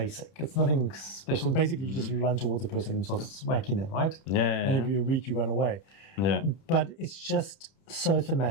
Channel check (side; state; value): right; late; 31 ms